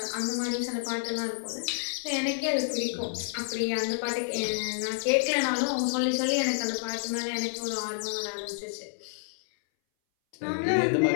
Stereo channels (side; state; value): right; silent; 58 dB below the other